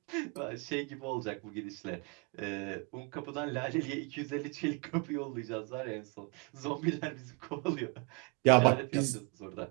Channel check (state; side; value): quieter; left; 32.2 dB